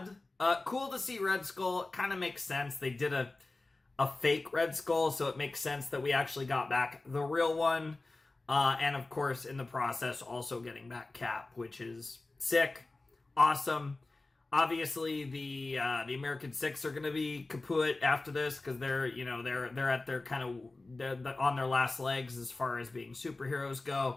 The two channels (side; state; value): right; quieter; 3.2 dB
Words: Cool to see Red Skull. It kind of makes sense. They did a fake Red Skull, so it makes sense that we actually got back the real one. And of course, in the process, also getting back Cap, which is sick, awesome. Obviously, the American Six are going to be kaput after this because they're at their they're on their last legs as far as being superheroes